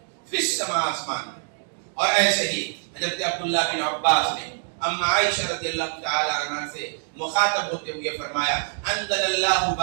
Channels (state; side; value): silent; left; 62 dB below the other